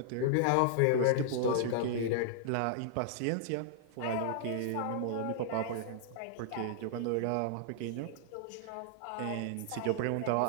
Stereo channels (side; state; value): both; different; correlation -0.01